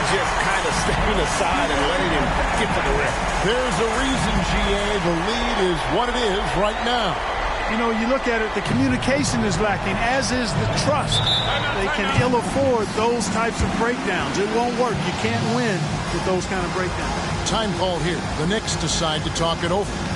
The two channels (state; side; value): identical; both; correlation 1.00